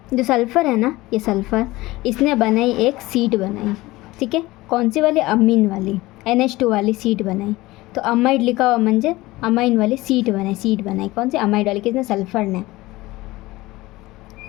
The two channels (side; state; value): right; quieter; 19.3 dB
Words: जो सल्फ़र है ना, ये सल्फ़र इसने बनाई एक सीट बनाई, ठीक है। कौन सी वाली, अमीन वाली, NH2 वाली सीट बनाई। तो अमाइड लिखा हुआ म्हणजे अमाइन वाली सीट बनाई, कौन सी, अमाइड वाली, किसने, सल्फ़र ने।